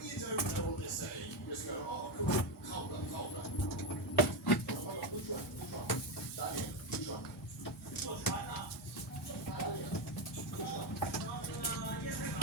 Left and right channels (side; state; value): both; normal; correlation 0.10